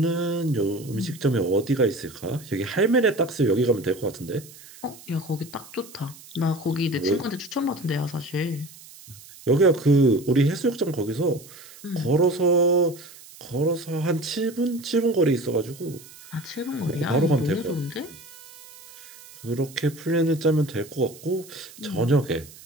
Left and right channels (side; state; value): right; noise; hiss, 20 dB below the sound